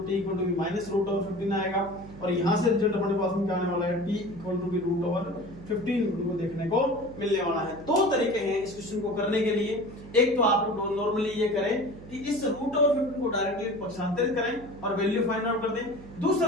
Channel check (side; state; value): right; noise; hum, 16 dB below the sound